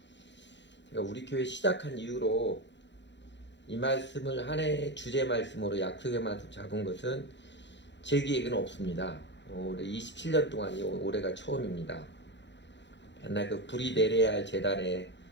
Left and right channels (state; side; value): late; right; 0.52 ms